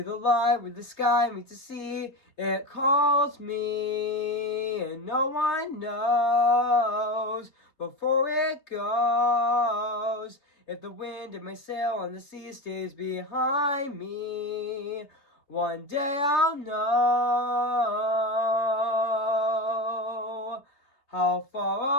light where the sky meets the sea. It calls me, and no one knows before it goes. If the wind in my sail on the sea stays behind me, one day I'll know how far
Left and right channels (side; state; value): right; late; 3.5 ms